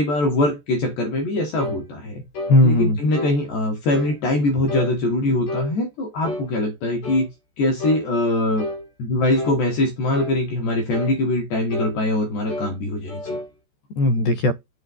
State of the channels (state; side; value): late; right; 14 ms